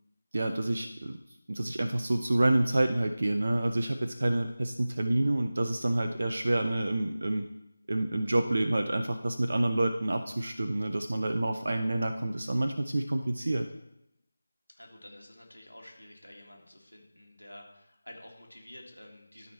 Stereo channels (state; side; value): inverted; both; correlation -0.98